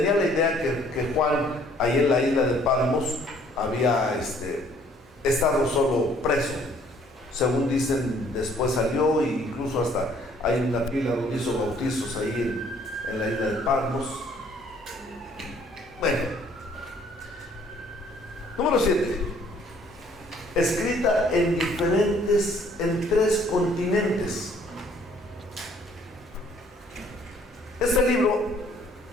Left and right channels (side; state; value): both; normal; correlation 0.60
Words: la idea que Juan ahí en la isla de Patmos había estado solo preso. Según dicen, después salió, e incluso hasta hay una pila donde hizo bautizos ahí en la isla de Patmos. Bueno, número 7, escrita en 3 continentes. Este libro